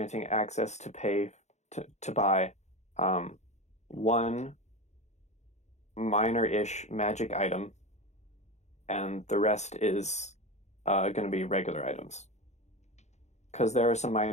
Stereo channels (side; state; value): right; late; 0.33 ms